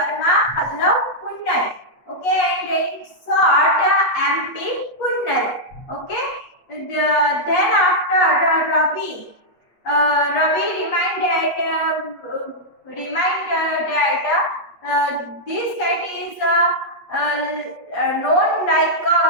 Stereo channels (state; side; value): late; right; 8.4 ms